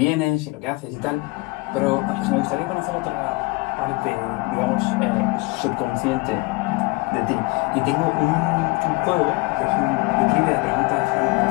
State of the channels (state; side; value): quieter; right; 24.4 dB